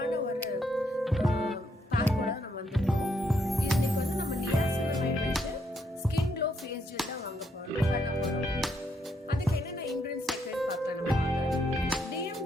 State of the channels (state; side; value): normal; both; correlation 0.75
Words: ஒரு பேக்கோட நம்ம வந்துட்டோம். இன்னைக்கு வந்து நம்ம நியாசினமைட் வச்சு ஸ்கின் க்ளோ ஃபேஸ் ஜெல் தான் வாங்க போறோம் பண்ண போறோம். அதுக்கு என்னென்ன இன்கிரிடியன்ட்ஸ் சேர்க்கறது பார்க்கலாம் நம்ம. டிஎம்